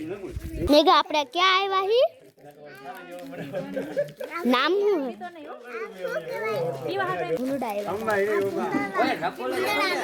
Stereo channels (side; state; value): both; identical; correlation 1.00